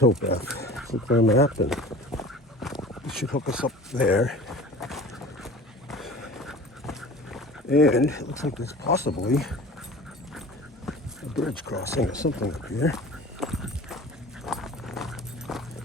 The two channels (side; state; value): both; normal; correlation 0.40